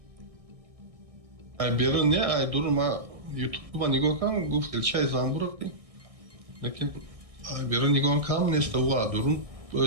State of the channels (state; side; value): late; left; 1.6 ms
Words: Ай берун не ай дурун ма ютуб нигоҳ кардам гуфт илчаи замбур. Лекин ай берун нигоҳ кардам неста ва дурун